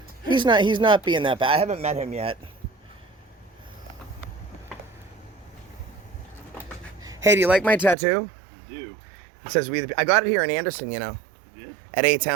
He's not being that bad. I haven't met him yet. Hey, do you like my tattoo? I do. It says we. I got it here in Anderson, you know. You did? At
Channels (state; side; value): drops out; left; at 8.0 s